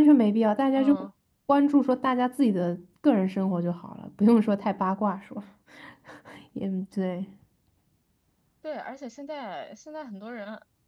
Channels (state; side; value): identical; both; correlation 1.00